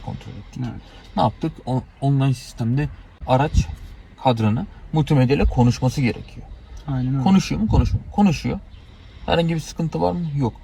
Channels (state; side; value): identical; both; correlation 1.00